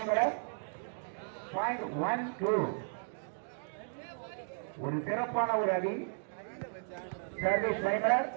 பாயிண்ட் 1-2. ஒரு சிறப்பான ஒரு அடி சர்வீஸ் பனிமலை.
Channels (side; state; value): left; silent; digital silence